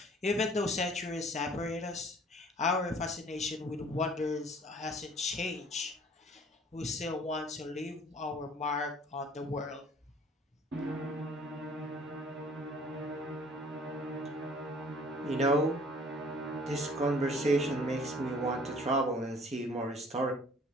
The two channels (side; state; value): both; normal; correlation 0.53